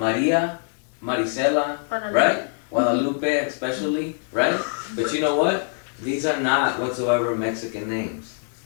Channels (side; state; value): right; silent; 63 dB below the other